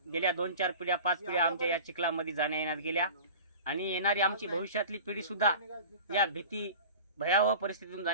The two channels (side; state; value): both; inverted; correlation -0.37